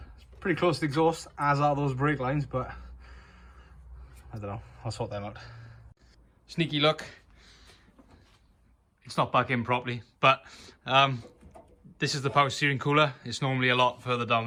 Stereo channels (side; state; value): both; identical; correlation 1.00